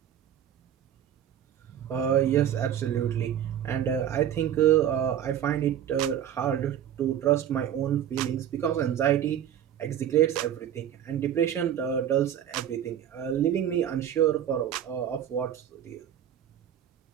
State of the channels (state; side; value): quieter; left; 10.1 dB